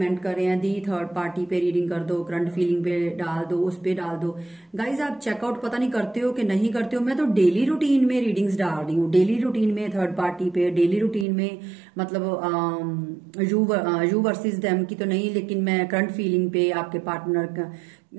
कर रहे हैं, दी थर्ड पार्टी पे रीडिंग कर दो, करंट फीलिंग पे डाल दो, उस पे डाल दो। गाइज, आप चेकआउट पता नहीं करते हो कि नहीं करते हो। मैं तो डेली रूटीन में रीडिंग्स डाल रही हूँ, डेली रूटीन में थर्ड पार्टी पे, डेली रूटीन में मतलब यू वर्सेस देम की तो नहीं, लेकिन मैं करंट फीलिंग पे, आपके पार्टनर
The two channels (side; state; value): left; drops out; at 11.2 s